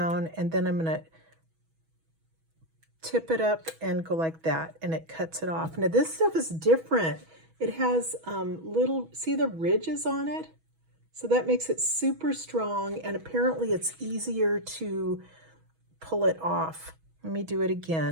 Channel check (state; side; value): late; left; 6.2 ms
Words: and then I'm going to tip it up and go like that, and it cuts it off. Now this stuff is different. It has little, see the ridges on it? So that makes it super strong, and apparently it's easier to pull it off. Let me do it